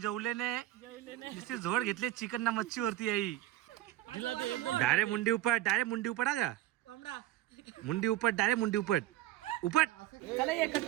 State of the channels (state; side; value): quieter; left; 14.7 dB